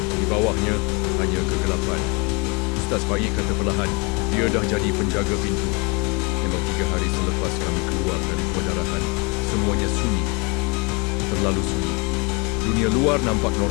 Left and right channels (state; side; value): quieter; right; 29.6 dB